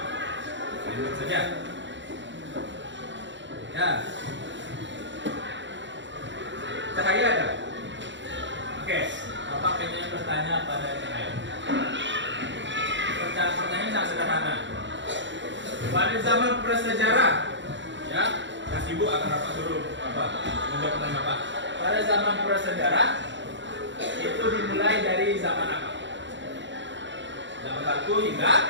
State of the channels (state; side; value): late; left; 0.53 ms